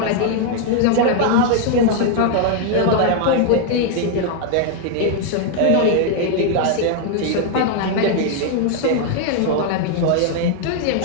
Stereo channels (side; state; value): both; different; correlation 0.00